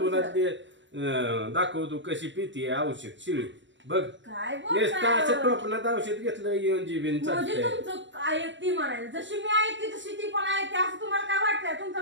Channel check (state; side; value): late; left; 0.54 ms